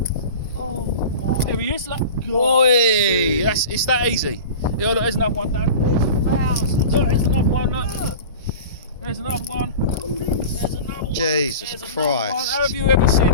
Oh my! There he is. Look. Oi! It's that easy. Yeah, look. There's another one, Dan. There's thousands. Look, there's another one. Look. There's another one. There's another one. Jesus Christ. One. Have you ever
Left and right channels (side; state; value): both; inverted; correlation -0.34